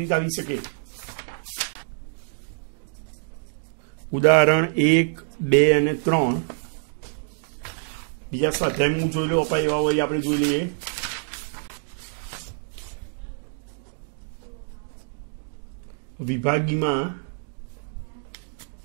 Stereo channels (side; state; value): left; silent; digital silence